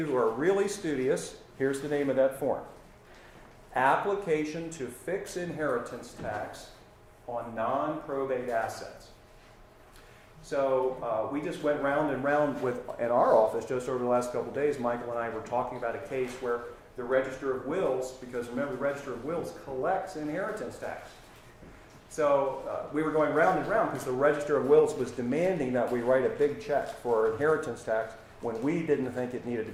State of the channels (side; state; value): both; identical; correlation 1.00